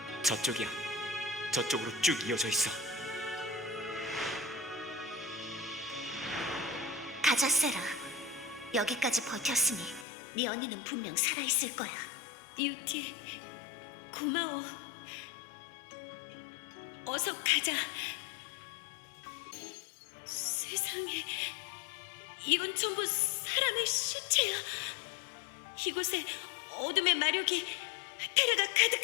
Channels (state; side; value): drops out; right; at 10.1 s